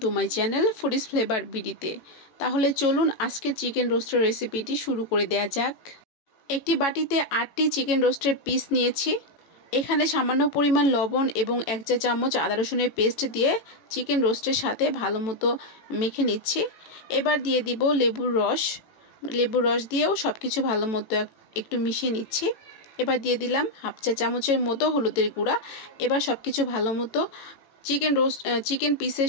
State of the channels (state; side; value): late; right; 18 ms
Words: to my channel foodies flavour বিডিতে। তাহলে চলুন আজকের চিকেন রোস্টের রেসিপিটি শুরু করে দেয়া যাক। একটি বাটিতে 8টি চিকেন রোস্টের পিস নিয়েছি। এখানে সামান্য পরিমাণ লবণ এবং 1 চা চামচ আদা রসুনের পেস্ট দিয়ে চিকেন রোস্টের সাথে ভালো মতো মেখে নিচ্ছি। এবার দিয়ে দিব লেবুর রস দিয়েও সব কিছু ভালো মতো একটু মিশিয়ে নিচ্ছি। এবার দিয়ে দিলাম 1/2 চা চামচের মতো হলুদের গুঁড়া। এবার সব কিছু ভালো মতো চিকেন পিসের